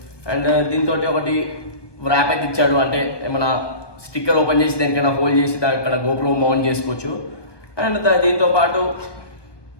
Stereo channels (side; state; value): right; late; 1.2 ms